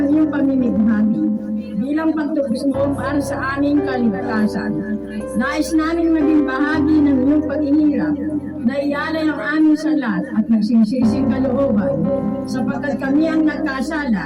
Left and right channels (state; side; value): identical; both; correlation 1.00